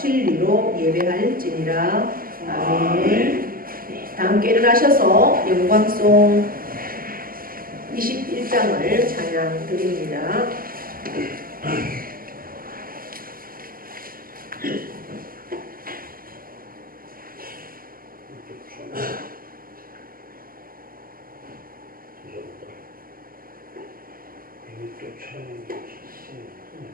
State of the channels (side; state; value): left; late; 0.42 ms